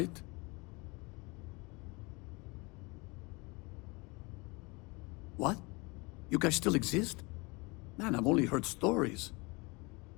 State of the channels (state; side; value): quieter; right; 27.0 dB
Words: What? You guys still exist? Man, I've only heard stories.